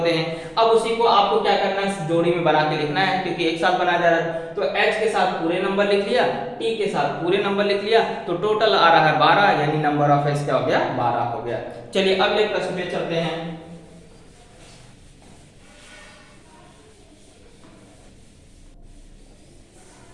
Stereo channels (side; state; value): both; identical; correlation 1.00